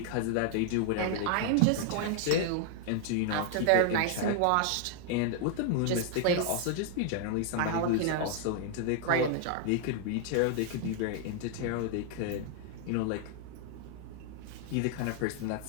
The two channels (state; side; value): different; both; correlation 0.00